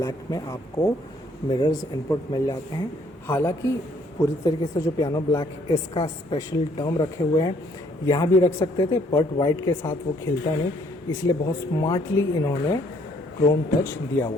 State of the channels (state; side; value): normal; both; correlation 0.64